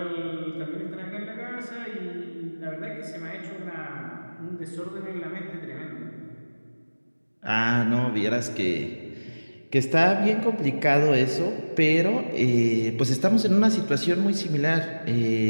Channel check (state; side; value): inverted; both; correlation -1.00